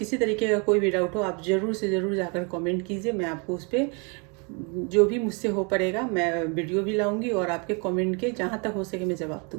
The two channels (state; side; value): quieter; left; 33.7 dB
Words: तरीके का कोई भी डाउट हो, आप ज़रूर से ज़रूर जाकर कमेंट कीजिए। मैं आपको उस पर जो भी मुझसे हो पड़ेगा मैं वीडियो भी लाऊंगी और आपके कमेंट के जहाँ तक हो सके मैं जवाब